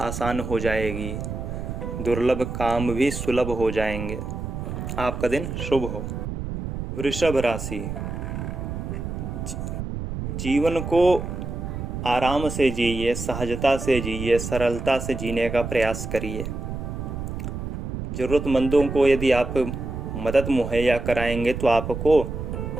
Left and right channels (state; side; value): noise; right; rumble, 6 dB below the sound